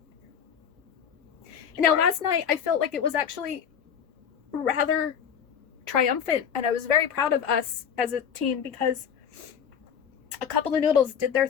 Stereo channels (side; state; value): right; quieter; 7.8 dB